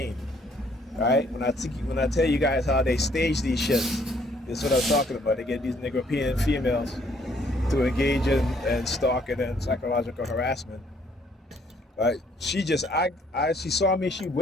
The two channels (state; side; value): normal; both; correlation 0.65